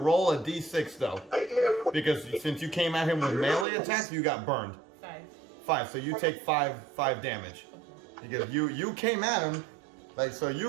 a D6 though, because since you came at him with melee attacks, you got burned. 5. So you take 5 damage. Because you came at him, like, so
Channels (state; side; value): drops out; left; at 3.7 s